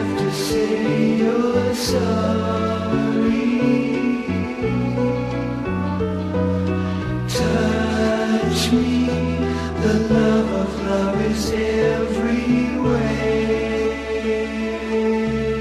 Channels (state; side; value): identical; both; correlation 1.00